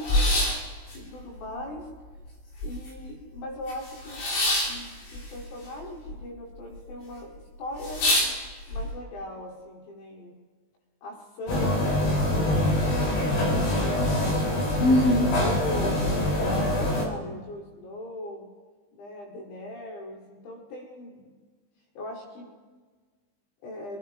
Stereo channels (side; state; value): right; late; 20 ms